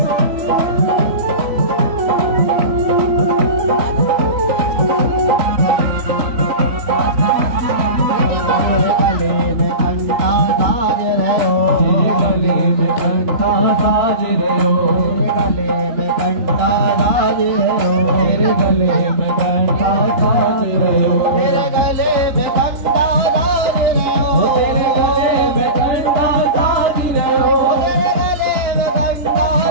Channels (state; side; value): late; left; 3.9 ms